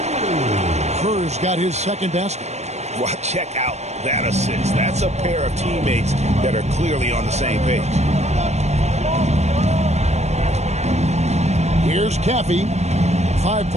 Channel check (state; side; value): late; left; 0.32 ms